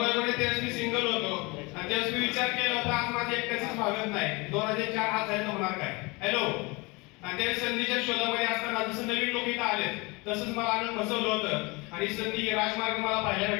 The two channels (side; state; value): right; quieter; 26.2 dB